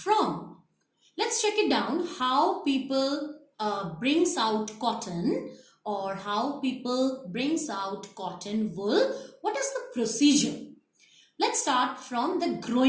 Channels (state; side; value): identical; both; correlation 1.00